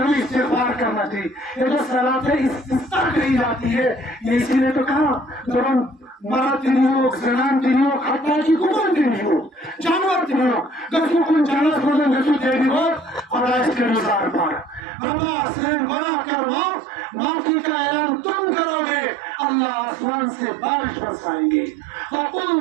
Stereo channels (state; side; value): drops out; left; at 14.8 s